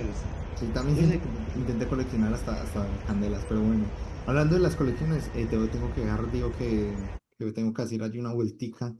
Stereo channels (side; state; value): both; identical; correlation 1.00